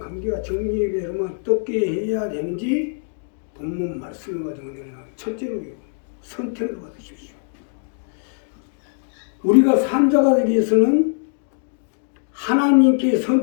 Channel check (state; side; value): silent; right; digital silence